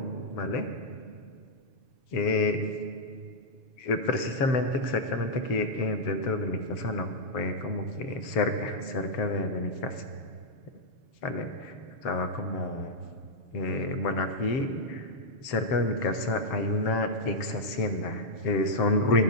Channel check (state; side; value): late; right; 7.0 ms